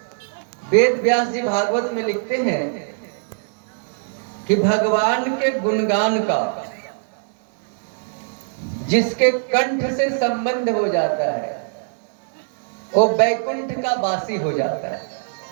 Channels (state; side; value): silent; left; 64 dB below the other